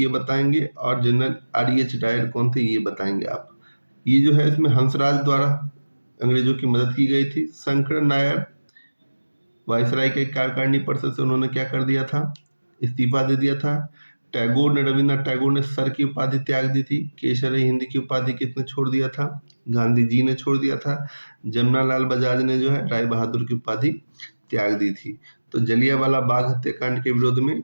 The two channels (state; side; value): inverted; both; correlation -1.00